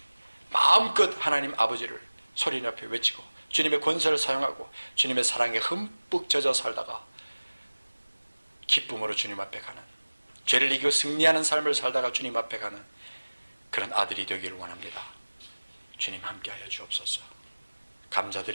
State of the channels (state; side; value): inverted; both; correlation -1.00